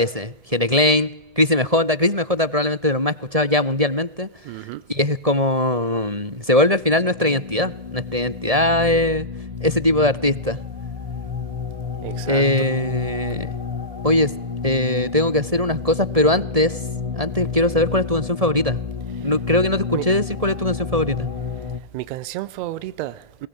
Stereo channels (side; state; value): left; late; 1.7 ms